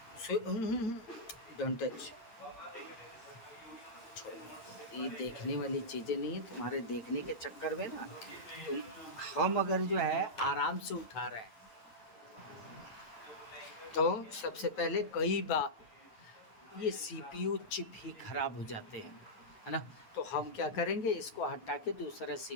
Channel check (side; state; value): right; late; 9.2 ms